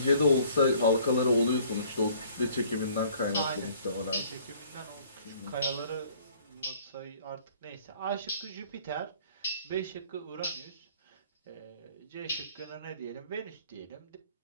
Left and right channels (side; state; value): both; inverted; correlation -0.56